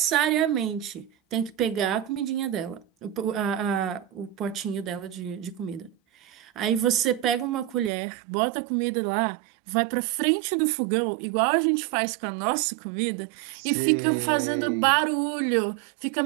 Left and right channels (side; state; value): left; drops out; at 7.9 s